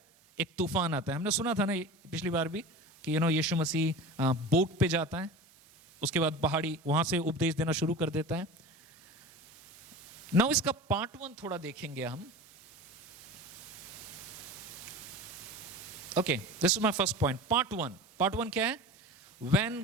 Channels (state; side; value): normal; both; correlation 0.33